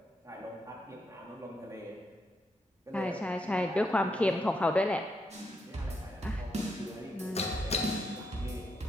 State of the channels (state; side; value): normal; both; correlation 0.80